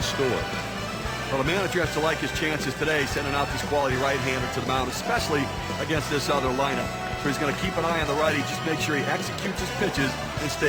store? Well, the manager has to like his chances today, sending out this quality right-hander to the mound, especially against this other lineup. So he's going to keep an eye on the righty, just make sure he executes his pitches and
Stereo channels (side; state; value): both; identical; correlation 1.00